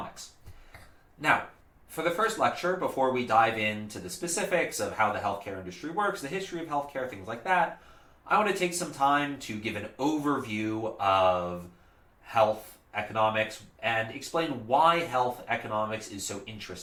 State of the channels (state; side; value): identical; both; correlation 1.00